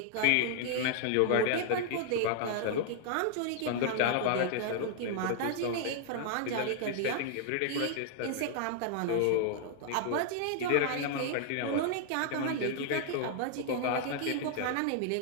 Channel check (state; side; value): different; both; correlation 0.00